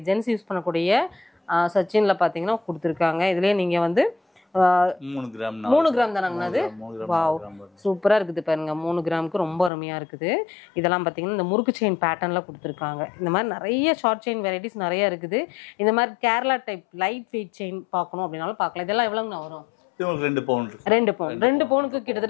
ஜென்ஸ் யூஸ் பண்ணக்கூடிய சச்சினில் பார்த்தீங்கன்னா கொடுத்துருக்காங்க. இதுலேயே நீங்கள் வந்து 3 கிராம் தானாங்கண்ணா? அது வாவ் சூப்பராக இருக்குது பாருங்க. 3 கிராமுக்கு ரொம்ப அருமையாக இருக்குது. இதெல்லாம் பார்த்தீங்கன்னா இந்த முறுக்கு செயின் பேட்டர்னில் கொடுத்துருக்காங்க. இந்த மாதிரி நிறைய ஷார்ட் செயின் வெரைட்டிஸ் நிறைய இருக்குது. இந்த மாதிரி Kerala type light weight chain பார்க்கணும் அப்படின்னாலும் பார்க்கலாம். இதெல்லாம் எவ்வளோங்கண்ணா வரும்? 2 பவுன். 2 பவுன். 2 பவுனுக்கு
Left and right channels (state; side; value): drops out; right; at 9.7 s